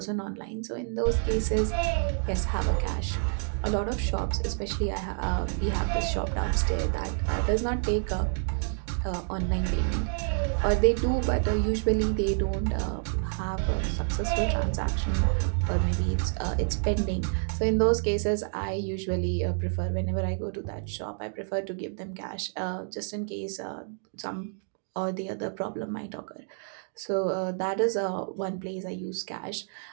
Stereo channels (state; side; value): silent; left; 59 dB below the other